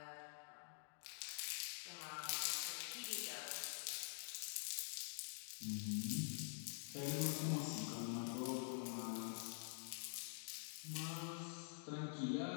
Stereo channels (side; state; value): right; silent; digital silence